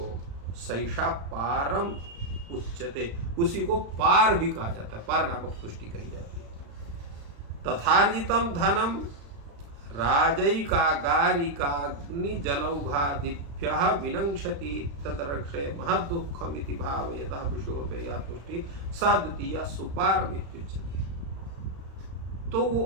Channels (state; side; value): late; left; 35 ms